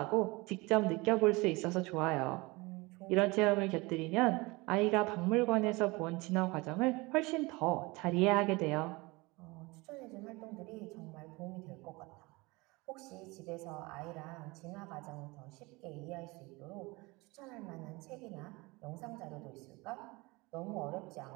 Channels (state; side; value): quieter; left; 24.1 dB